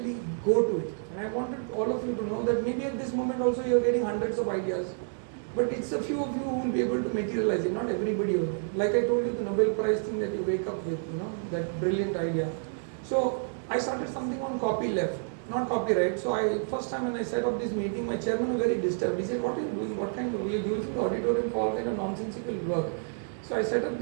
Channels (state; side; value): silent; left; 56 dB below the other